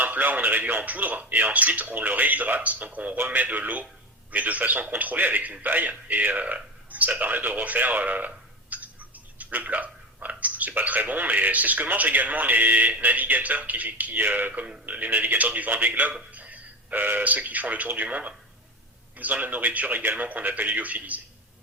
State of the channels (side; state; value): both; normal; correlation 0.24